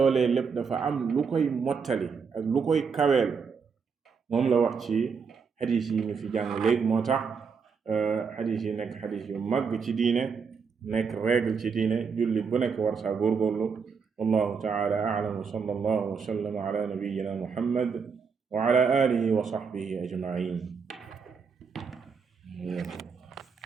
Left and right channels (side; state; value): left; quieter; 5.7 dB